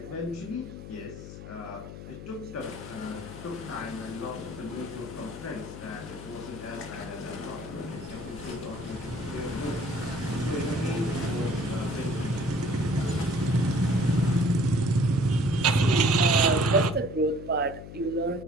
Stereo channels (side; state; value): left; noise; hum, 12 dB below the sound